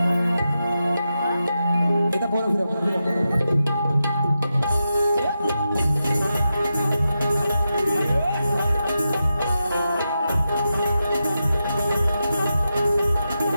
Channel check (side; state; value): both; inverted; correlation -0.89